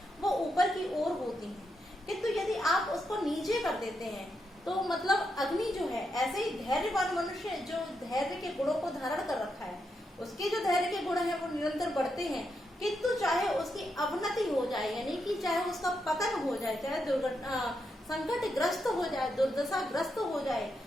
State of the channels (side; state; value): both; normal; correlation 0.83